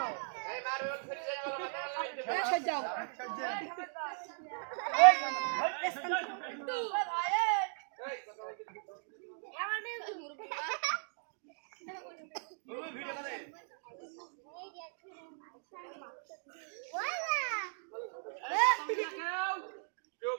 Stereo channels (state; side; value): silent; left; 53 dB below the other